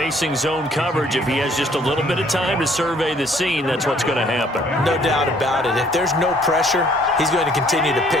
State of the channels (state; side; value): normal; both; correlation 0.61